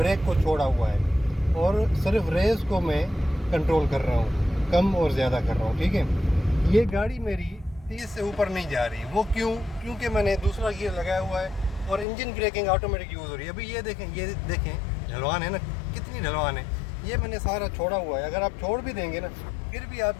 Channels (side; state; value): right; drops out; at 12.1 s